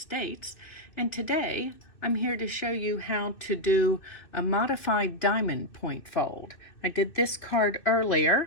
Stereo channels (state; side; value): late; right; 2.6 ms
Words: and today I'm here to show you how to do a modified diamond point fold. I did this card